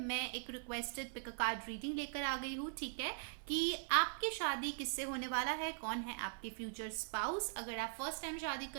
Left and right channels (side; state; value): left; silent; 50 dB below the other